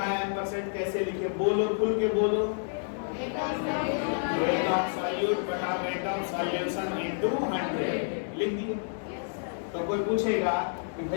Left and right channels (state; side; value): silent; right; digital silence